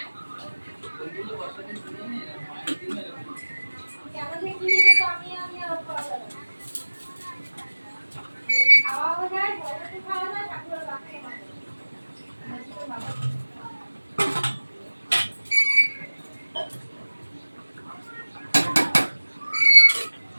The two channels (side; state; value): both; inverted; correlation -1.00